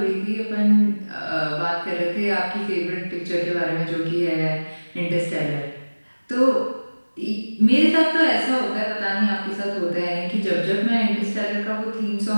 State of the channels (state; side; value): inverted; both; correlation -1.00